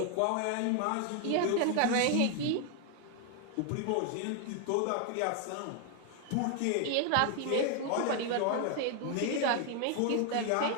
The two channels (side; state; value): both; different; correlation 0.00